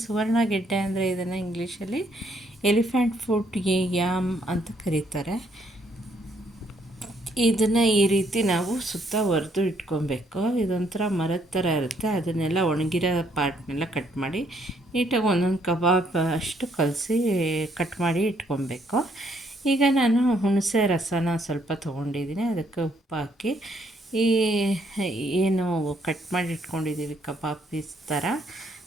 ಸುವರ್ಣಗೆಡ್ಡೆ ಅಂದರೆ ಇದನ್ನು ಇಂಗ್ಲೀಷಲ್ಲಿ ಎಲಿಫೆಂಟ್ ಫುಟ್ ಯಾಮ್ ಅಂತ ಕರೀತಾರೆ. ಇದನ್ನು ಈ ರೀತಿ ನಾವು ಸುತ್ತ ಒರೆದು ಇಟ್ಕೊಬೇಕು. ಇದೊಂಥರ ಮರದ ಥರ ಇರುತ್ತೆ. ಅದನ್ನೆಲ್ಲ ಒಣಗಿರೋ ಪಾರ್ಟ್ನೆಲ್ಲ ಕಟ್ ಮಾಡಿ ನೀಟಾಗಿ ಒಂದೊಂದು ಕಬಾಬ್ ಅಷ್ಟು ಕಟ್ ಮಾಡಿ ಇಟ್ಕೊಬೇಕು. ಈಗ ನಾನು ಹುಣಸೆ ರಸನ ಸ್ವಲ್ಪ ತೊಗೊಂಡಿದ್ದೀನಿ. ಅದಕ್ಕೆ ಉಪ್ಪು ಹಾಕಿ ಈ ಏನು ಕಟ್ ಮಾಡಿ ಇಟ್ಕೊಂಡಿದ್ದೀವಿ ಕಬಾಬ್ ಪೀಸ್ ಥರ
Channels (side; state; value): both; normal; correlation 0.70